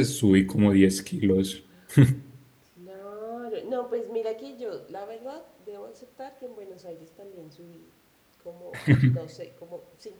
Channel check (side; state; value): both; identical; correlation 1.00